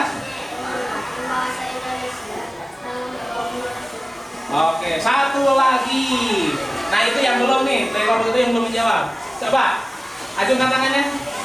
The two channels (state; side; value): normal; both; correlation 0.97